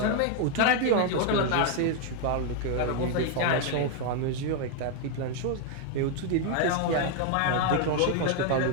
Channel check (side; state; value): both; different; correlation 0.00